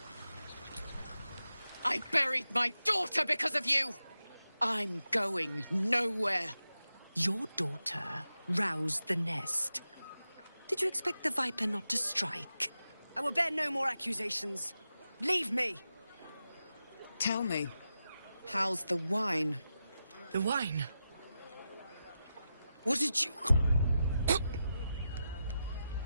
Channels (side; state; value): both; inverted; correlation -0.90